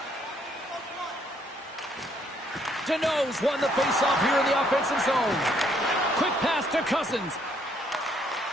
Deneau's won the face-off here in the offensive zone. Quick pass to Cousins.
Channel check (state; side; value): normal; both; correlation 0.68